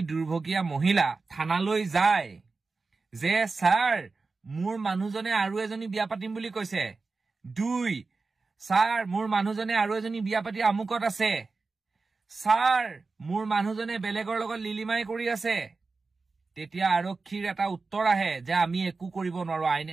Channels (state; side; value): quieter; left; 4.1 dB